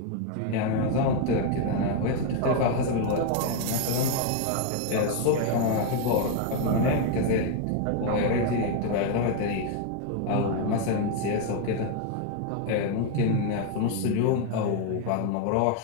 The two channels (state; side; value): different; both; correlation 0.01